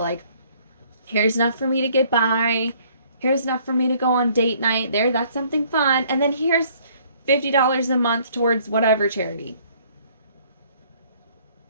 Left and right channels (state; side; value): inverted; both; correlation -0.60